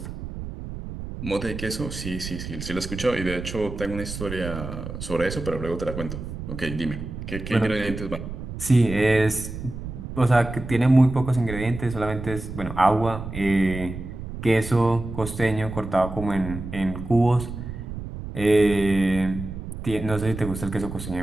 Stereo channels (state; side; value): noise; right; rumble, 8 dB below the sound